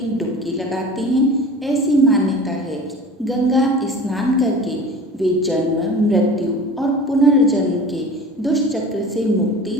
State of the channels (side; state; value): both; normal; correlation 0.39